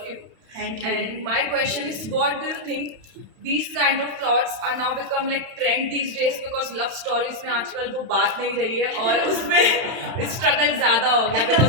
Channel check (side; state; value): left; late; 31 ms